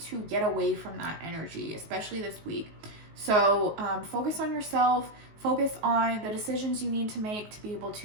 get away from that energy, especially this week. So focus on yourself, focus on the decisions you need to make to be able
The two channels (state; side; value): late; left; 19 ms